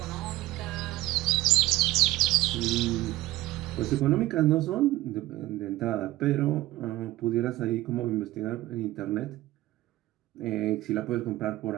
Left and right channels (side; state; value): left; quieter; 17.2 dB